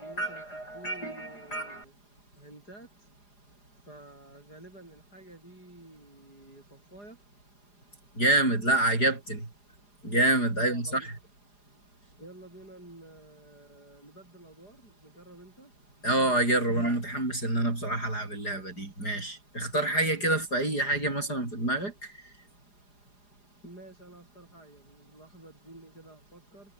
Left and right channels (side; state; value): right; late; 4.9 ms